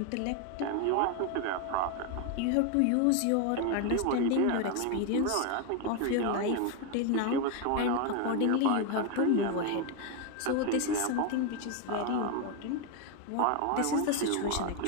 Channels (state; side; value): different; both; correlation 0.01